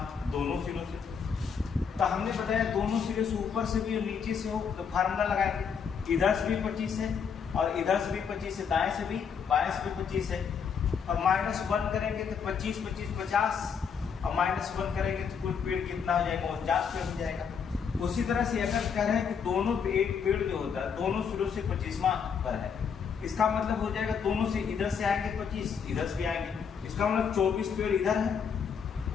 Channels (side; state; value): right; quieter; 6.7 dB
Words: दोनों सिरों से। तो हमने बताया दोनों सिरे से, ऊपर से भी और नीचे से हो, तो फार्मूला लगाएंगे, इधर से भी 25 है और इधर से भी 25 है, दाएं से भी बाएं से भी 25 है, और -1 करेंगे तो 25 25 50, और -1 करेंगे तो कुल पेड़ कितना हो जाएगा, 49 पेड़ हो जाएगा। उसी तरह से अगर कह रहे हैं कि दोनों पे एक पेड़ जो होता है दोनों सिरों से 25वां पर है, इसका मतलब हो जाएगा दोनों से इधर से आएंगे 25, इधर से भी आएंगे, इसका मतलब 24 पेड़ इधर है